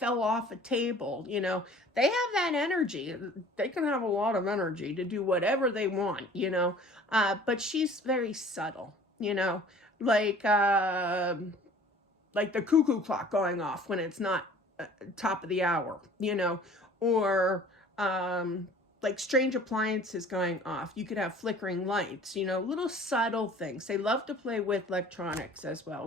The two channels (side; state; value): both; normal; correlation 0.48